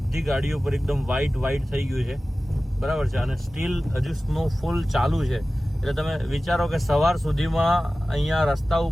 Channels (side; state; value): both; normal; correlation 0.96